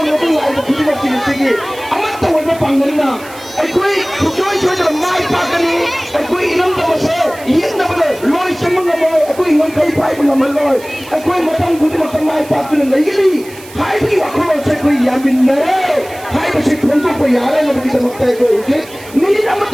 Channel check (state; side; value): noise; right; hiss, 19 dB below the sound